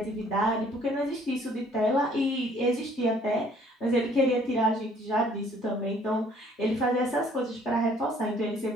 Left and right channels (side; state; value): both; normal; correlation 0.59